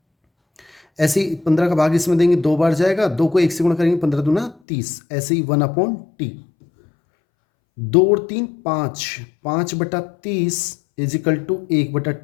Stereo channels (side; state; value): right; drops out; at 4.5 s